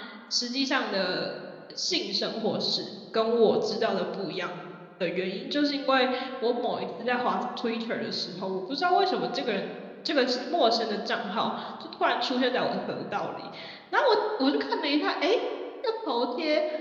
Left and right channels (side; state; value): both; identical; correlation 1.00